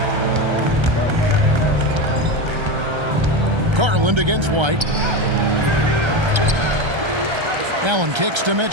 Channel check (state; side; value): late; left; 1.3 ms